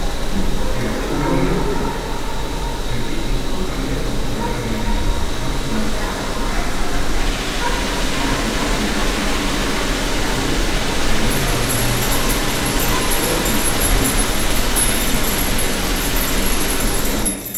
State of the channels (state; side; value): identical; both; correlation 1.00